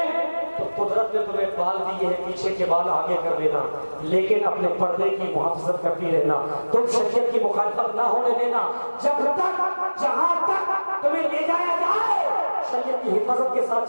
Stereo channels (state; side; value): inverted; both; correlation -1.00